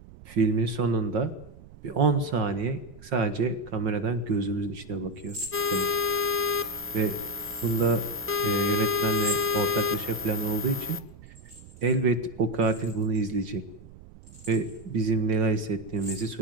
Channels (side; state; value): right; noise; rumble, 20 dB below the sound